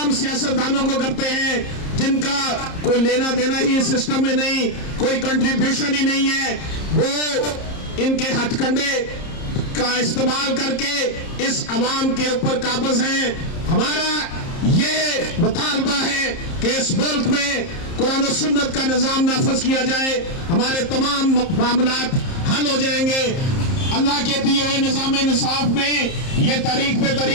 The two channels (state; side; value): late; right; 30 ms